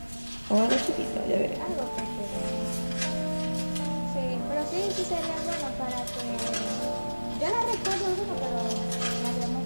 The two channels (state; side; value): inverted; both; correlation -1.00